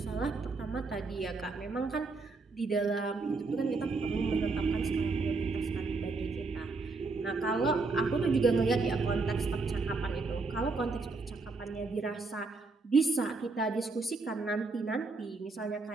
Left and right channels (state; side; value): quieter; left; 3.8 dB